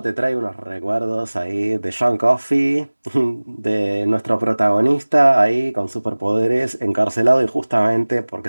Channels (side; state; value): both; inverted; correlation -1.00